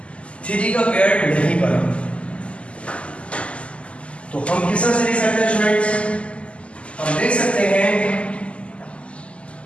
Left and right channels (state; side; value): late; right; 0.057 ms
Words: का पेयर नहीं बना, तो हम किस तरह से लिख सकते हैं स्टूडेंट्स, हम देख सकते हैं